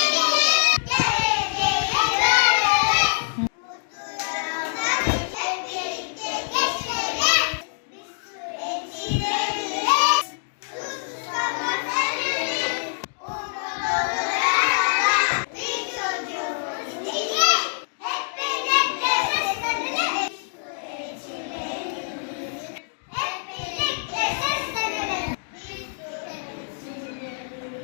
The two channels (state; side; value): silent; right; digital silence